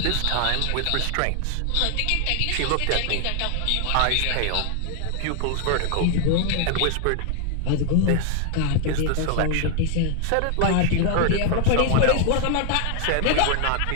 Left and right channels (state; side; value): different; both; correlation 0.00